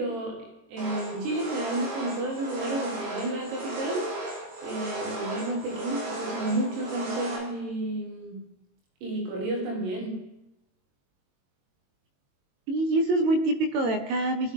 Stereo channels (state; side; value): late; left; 22 ms